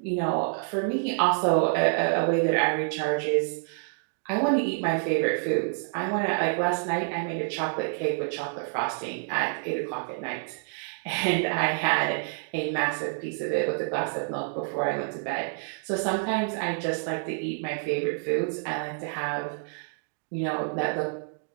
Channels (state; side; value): silent; left; 59 dB below the other